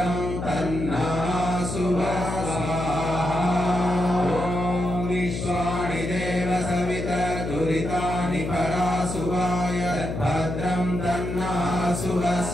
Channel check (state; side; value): noise; left; hum, 5 dB below the sound